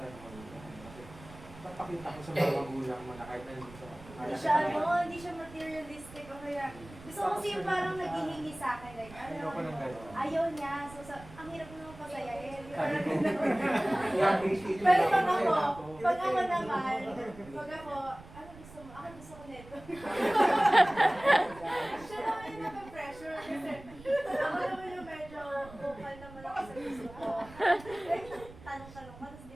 mo. Kasi, papakita ko sa mga magulang mo na kahit na hindi sa Hindi siya materialistic o kaya, gusto ko kasi yung parang naghihingi sa akin, like, Ayoko ng gano'n. ayaw niya, so ang hirap naman pasayahin. Pero Pero pag ako naman, pag ako, ano gusto mo? Ako gusto ko nito. Siya naman yung naka-pressure kasi ako naman yung medyo vocal naman ako sa gusto ko. Like, tanong-tanong ka, tapos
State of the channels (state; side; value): noise; right; rumble, 18 dB below the sound